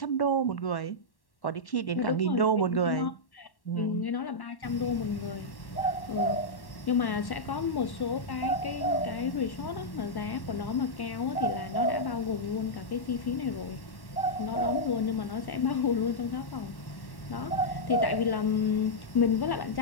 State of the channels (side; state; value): right; late; 1.1 ms